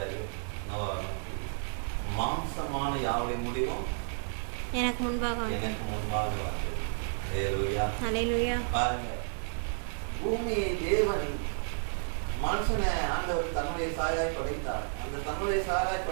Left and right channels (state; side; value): silent; left; digital silence